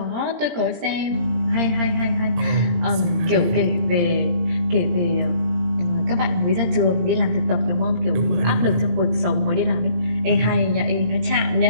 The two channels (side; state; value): left; late; 17 ms